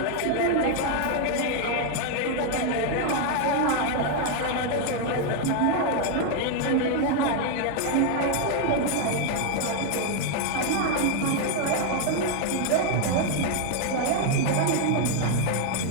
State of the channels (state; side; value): different; both; correlation 0.00